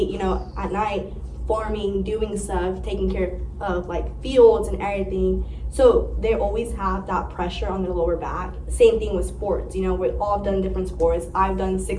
you know, at night, farming, doing stuff, taking care of like fields and everything. So they always have that pressure on their lower back. Same thing with sports, you know, we've all done different sports. I've done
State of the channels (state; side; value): identical; both; correlation 1.00